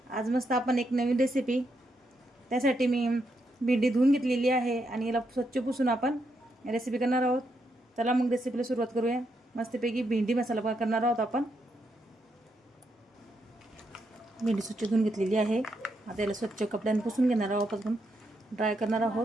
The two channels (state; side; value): normal; both; correlation 0.80